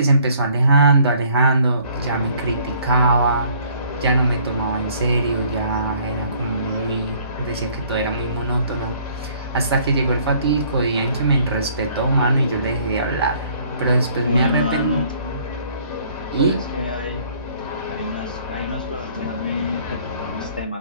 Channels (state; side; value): inverted; both; correlation -0.59